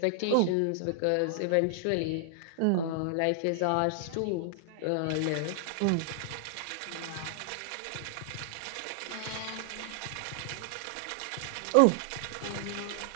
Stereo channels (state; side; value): different; both; correlation -0.01